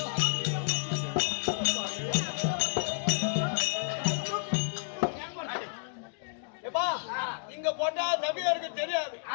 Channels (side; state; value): right; silent; digital silence